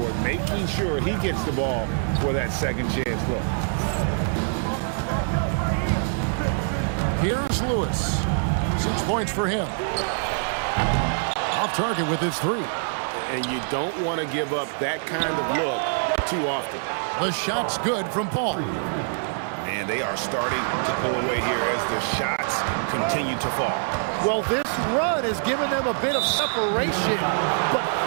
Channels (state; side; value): silent; left; digital silence